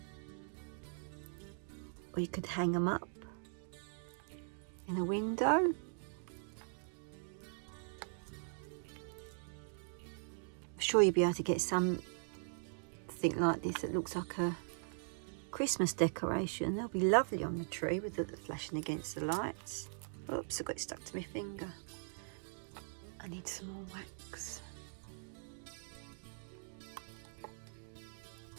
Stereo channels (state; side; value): silent; left; digital silence